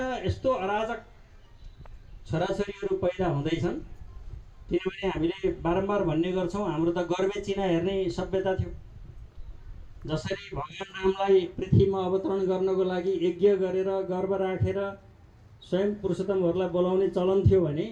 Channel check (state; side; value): identical; both; correlation 1.00